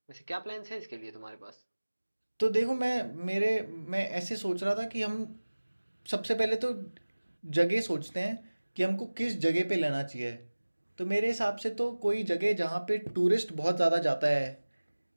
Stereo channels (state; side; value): inverted; both; correlation -1.00